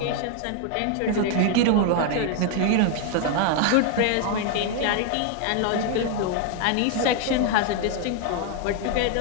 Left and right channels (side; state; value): both; different; correlation 0.00